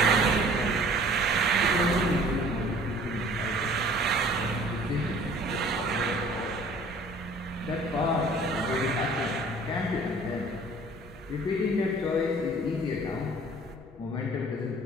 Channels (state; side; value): normal; both; correlation 0.51